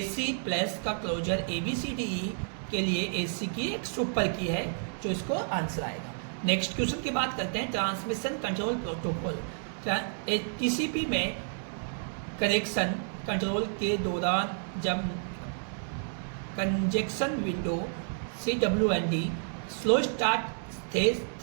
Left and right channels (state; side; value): silent; left; 57 dB below the other